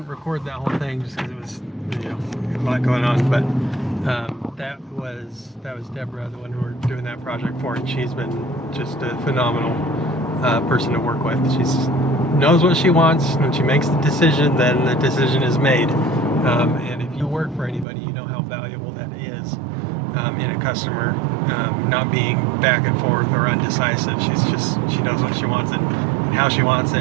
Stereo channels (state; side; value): drops out; left; at 17.9 s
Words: record that whole thing just because it was, a lot going on. But that was Deborah, the one who we're doing that project for, and she's been just a phenomenal person to work with. She knows what she wants. When she makes the decision, then the decision is made. And if you work for anybody, you know how valuable that is in a customer, not being back and forth or undecisive. She knows what she wants it and how she wants